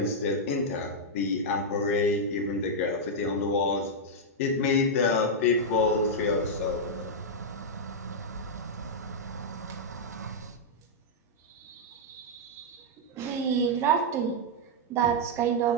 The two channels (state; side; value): normal; both; correlation -0.05